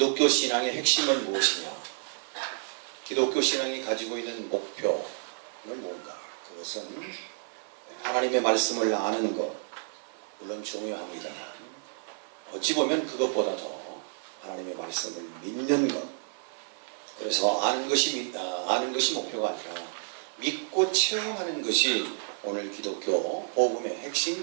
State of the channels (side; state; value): left; silent; digital silence